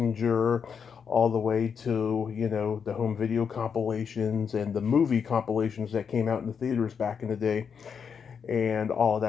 all the way to, the home video compilations and the movie compilations that came out in the theaters back in the day. And all of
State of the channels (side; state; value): right; quieter; 6.7 dB